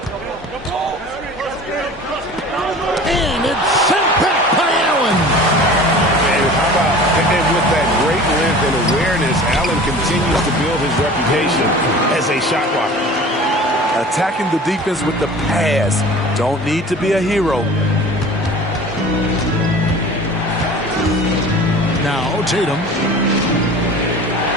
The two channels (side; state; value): both; normal; correlation 0.41